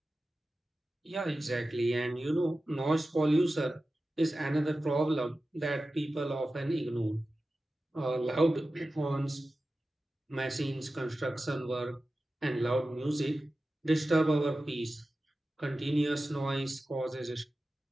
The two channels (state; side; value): normal; both; correlation 0.94